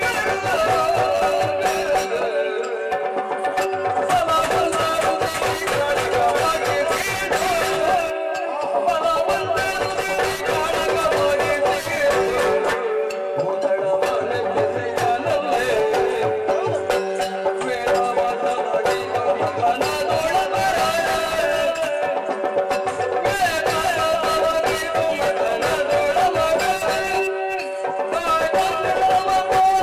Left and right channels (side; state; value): both; identical; correlation 1.00